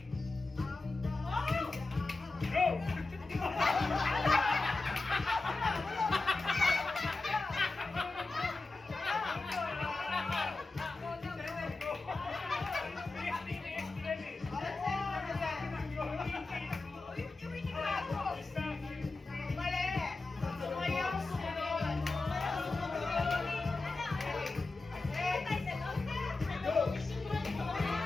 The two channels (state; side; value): quieter; right; 3.4 dB